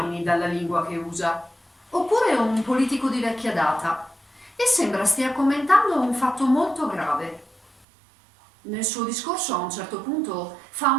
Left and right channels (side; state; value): left; drops out; at 7.9 s